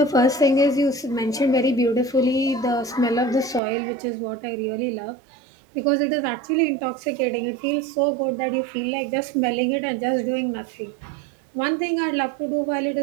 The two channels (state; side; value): drops out; left; at 3.6 s